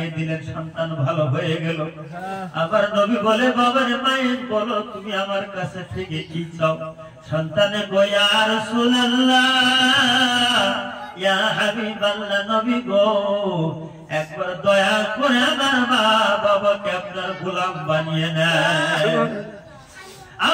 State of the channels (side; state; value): both; identical; correlation 1.00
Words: দিলেন। সন্তান ভালো হয়ে গেল। আবার নবী বলে, বাবারে, মায়ের বলো, তুমি আমার কাছে থেকে কি চাও? সন্তানে গো, ইয়া রাসূলুল্লাহ, ইয়া হাবিবাল্লাহ, নবী গো, একবার দয়া করে আমার মা বাবাকে আপনার গোলাম বানিয়ে নেন।